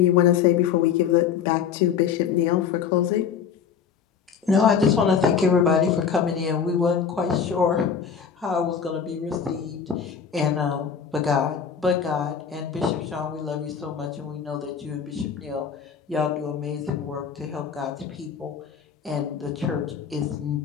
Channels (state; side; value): quieter; right; 7.1 dB